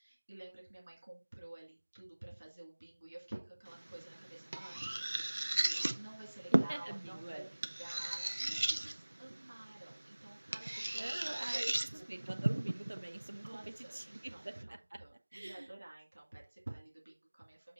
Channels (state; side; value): inverted; both; correlation -1.00